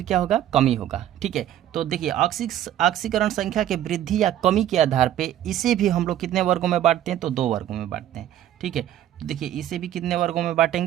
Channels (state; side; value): quieter; left; 12.0 dB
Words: क्या होगा, कमी होगा। ठीक है, तो देखिए ऑक्सीकरण संख्या के वृद्धि या कमी के आधार पे इसे भी हम लोग कितने वर्गों में बांटते हैं, तो 2 वर्गों में बांटते हैं। ठीक है, तो देखिए इसे भी कितने वर्गों में